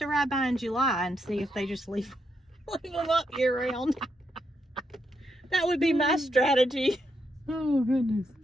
ride by in July and see if they just leave them up year round. That would be my strategy. Oh, goodness.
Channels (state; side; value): normal; both; correlation 0.80